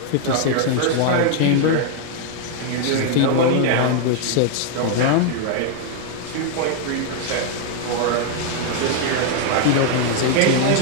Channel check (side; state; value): both; different; correlation 0.00